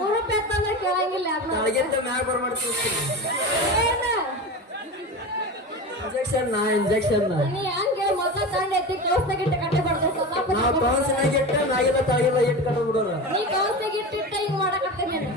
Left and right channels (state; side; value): normal; both; correlation 0.27